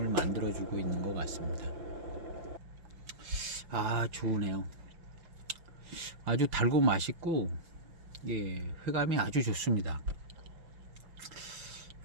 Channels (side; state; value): left; late; 5.8 ms